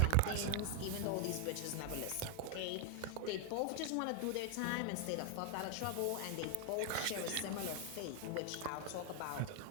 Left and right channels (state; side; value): different; both; correlation 0.00